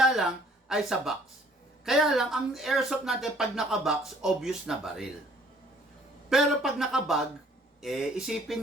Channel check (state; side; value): normal; both; correlation 0.59